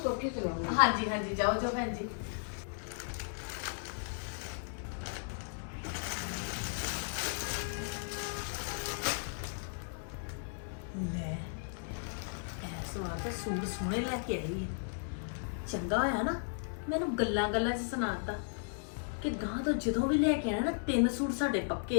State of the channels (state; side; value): silent; right; digital silence